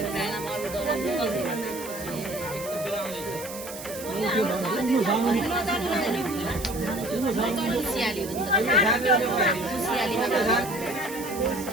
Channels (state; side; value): noise; right; hiss, 12 dB below the sound